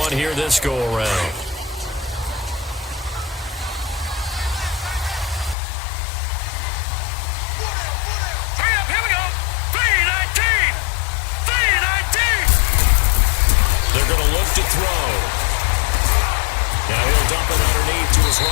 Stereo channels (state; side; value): drops out; right; at 5.6 s